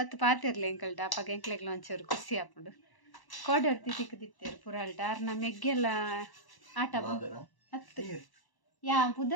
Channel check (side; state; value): right; late; 1.1 ms